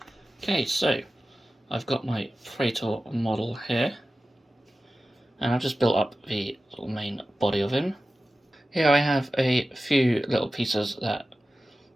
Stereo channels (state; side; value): normal; both; correlation 0.95